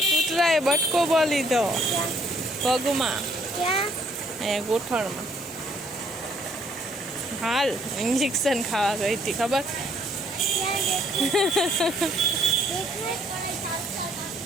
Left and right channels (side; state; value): both; normal; correlation 0.64